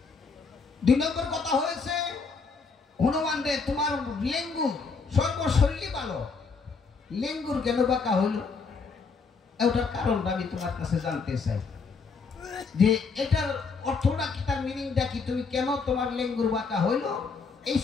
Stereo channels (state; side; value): quieter; right; 4.8 dB